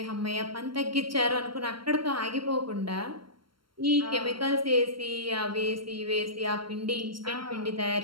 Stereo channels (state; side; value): late; left; 0.73 ms